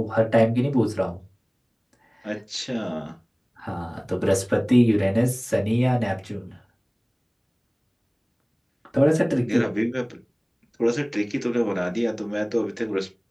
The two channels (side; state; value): both; identical; correlation 1.00